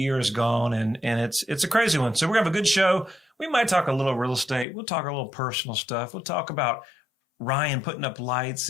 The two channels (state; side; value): drops out; right; at 4.7 s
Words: is gone, and it's a crazy one. So we're going to have a good show. We might talk a little real estate. We'll talk a little personal stuff. We'll talk about Ryan putting up